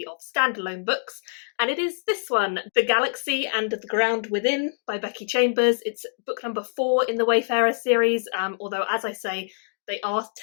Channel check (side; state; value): right; silent; digital silence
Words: of standalone books. And it is this one, The Galaxy and the Ground Within by Becky Chambers. It's book number 4 in the Wayfarer series, although as I say, they are